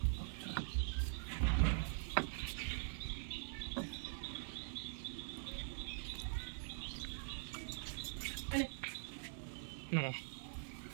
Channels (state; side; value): silent; left; digital silence